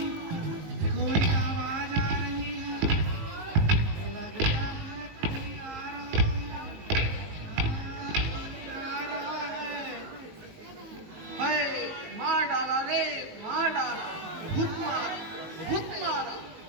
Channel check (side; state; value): left; late; 19 ms